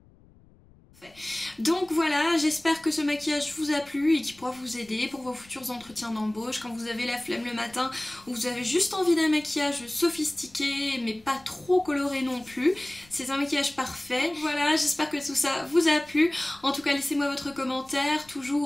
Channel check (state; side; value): noise; left; rumble, 27 dB below the sound